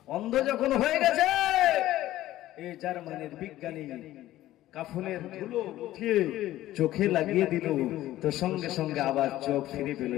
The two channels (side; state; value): right; quieter; 14.7 dB